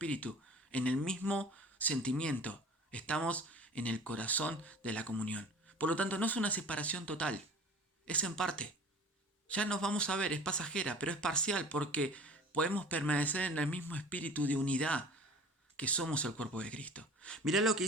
en el mismo sentimiento, estamos en el corazón de la comunión. Por lo tanto, no es una separación total, es en parte. Ya nos vamos a ver, es pasajera, pero es parcial, porque podemos permanecer en el mismo espíritu de unidad que somos el cuerpo de Cristo. Mirá lo que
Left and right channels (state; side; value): normal; both; correlation 0.42